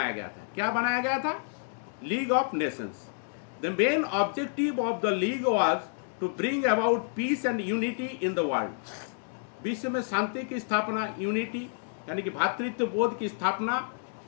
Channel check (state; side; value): silent; right; digital silence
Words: गया था। क्या बनाया गया था, League of Nations. The main objective of the league was to bring about peace and unity in the world. विश्व में शांति की स्थापना, यूनिटी यानी कि भातृत्व बोध की स्थापना